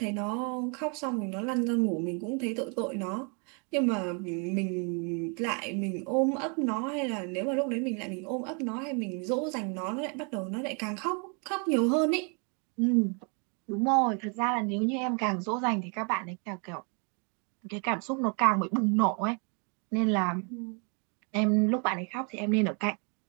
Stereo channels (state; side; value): quieter; left; 36.6 dB